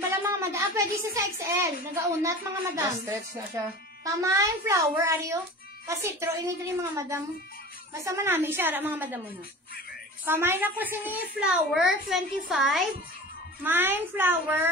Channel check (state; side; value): normal; both; correlation 0.36